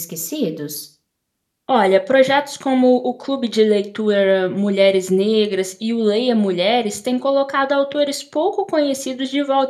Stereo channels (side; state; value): both; identical; correlation 1.00